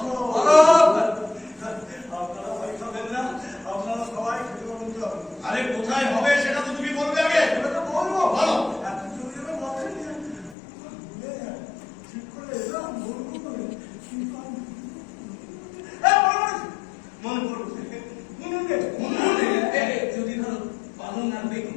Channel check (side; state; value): right; drops out; at 10.6 s